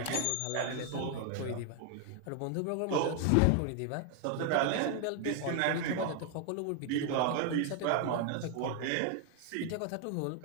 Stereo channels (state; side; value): different; both; correlation 0.00